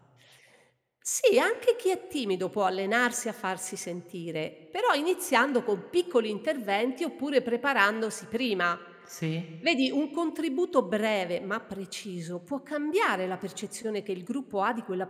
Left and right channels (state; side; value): identical; both; correlation 1.00